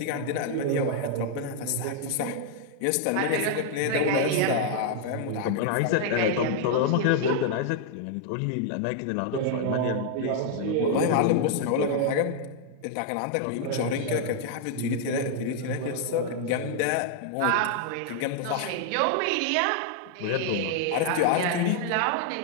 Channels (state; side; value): different; both; correlation 0.00